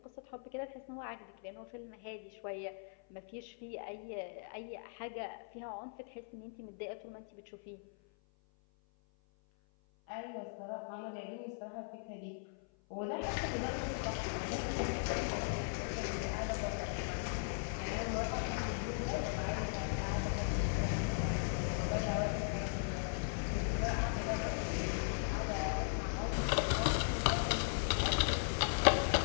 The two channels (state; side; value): silent; right; 52 dB below the other